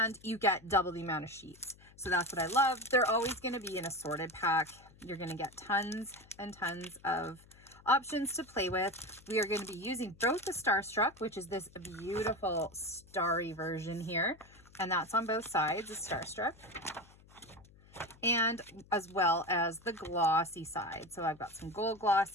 you get double the amount of sheets. So that's what I love. They're always going to be an assorted pack. You're going to get tons and tons of options to play with. We are going to be using both the Starstruck, which is this beautiful starry version here. And that's on both sides, the Starstruck. And as well as the glossy side. So I've got some gold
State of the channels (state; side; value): noise; left; hum, 25 dB below the sound